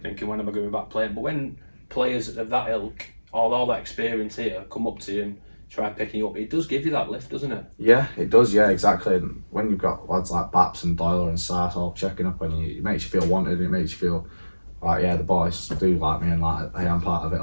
thinking, when am I going back playing? But when players of that ilk, all that experience here, come up to you and try picking you up, it does give you that lift, doesn't it? Yeah, it does. Yeah, exactly. And when you've got lads like Baps and Doyle and Sars all checking up on you, it makes you feel wanted. It makes you feel like, yeah, the boys do like me and like I am part of it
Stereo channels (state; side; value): inverted; both; correlation -1.00